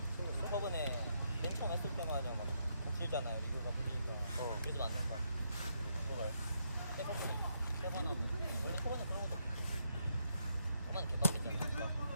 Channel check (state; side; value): inverted; both; correlation -0.77